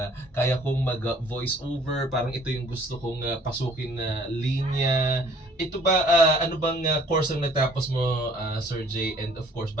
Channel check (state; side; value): normal; both; correlation 0.56